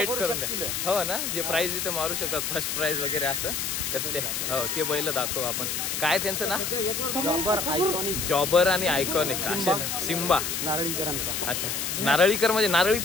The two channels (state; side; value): noise; left; hiss, 2 dB below the sound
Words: करून द्या. हो ना, जे प्राइज इथे मारू शकतात, फर्स्ट प्राइज वगैरे असं. तर ते हो ते बैल दाखव आपण. काय त्यांचं ना, जॉबर आणि आयकॉनिक असे. सिम्बा नारळीकरांचा. अच्छा, नारळीकर म्हणजे नारळी